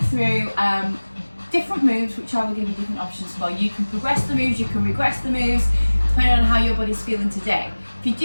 through different moves which I will give you different options for. You can progress the moves, you can regress the moves depending on how your body's feeling today. If you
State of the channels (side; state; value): both; inverted; correlation -1.00